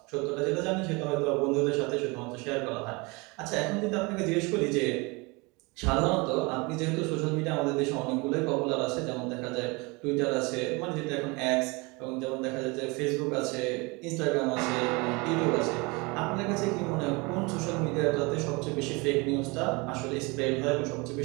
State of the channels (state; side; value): quieter; left; 26.9 dB